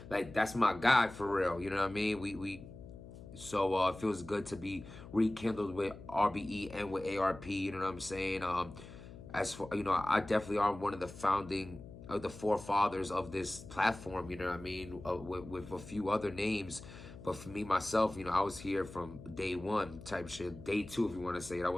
Like, that's my guy for real. You know what I mean? So it feels good to be rekindled with RBE and with ARP. You know what I'm saying? As for, you know, I definitely are one of the founding of the forefathers of this platform. You know what I mean? With a few other names. But for me, myself, you know, I was here from day one type shit. Day two, if you want to say it. I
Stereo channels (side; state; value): left; noise; hum, 15 dB below the sound